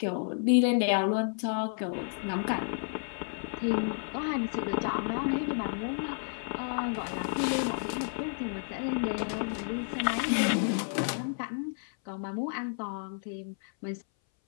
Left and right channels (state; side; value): silent; right; 57 dB below the other